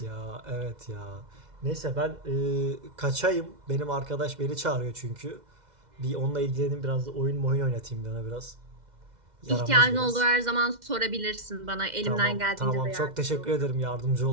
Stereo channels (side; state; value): left; late; 2.1 ms